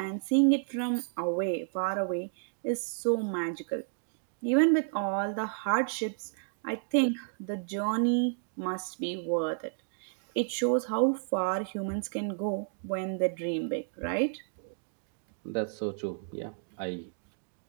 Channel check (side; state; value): left; silent; digital silence